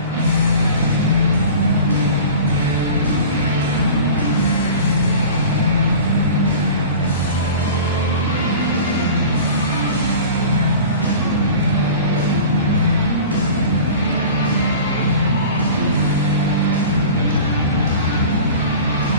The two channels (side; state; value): both; inverted; correlation -0.38